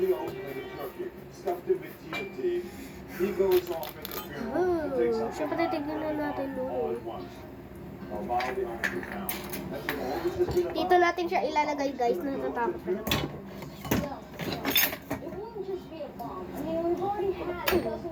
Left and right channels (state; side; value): identical; both; correlation 1.00